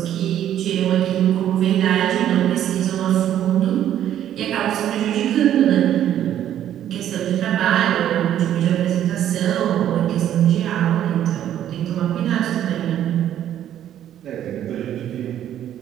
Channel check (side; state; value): left; quieter; 11.1 dB